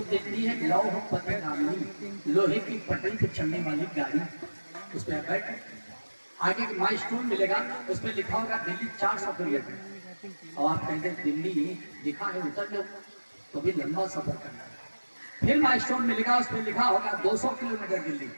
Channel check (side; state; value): both; inverted; correlation -1.00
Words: हिंदी है लौह पथ गामी, लोहे की पटरी पे चलने वाली गाड़ी। उस पर बैठ, आगे माइलस्टोन मिलेगा, उस पर लिखा होगा दिल्ली 400 किलोमीटर, और आप कहते हैं दिल्ली लिखा है उतर लो, तो भी लंबा सफर करना है। फिर माइलस्टोन मिलेगा, उस पर लिखा होगा 200 किलोमीटर दिल्ली,